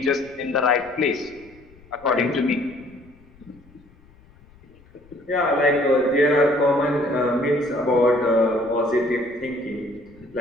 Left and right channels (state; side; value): noise; left; rumble, 27 dB below the sound